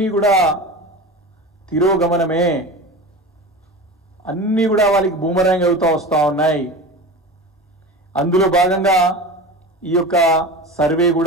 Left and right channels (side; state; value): both; normal; correlation 0.30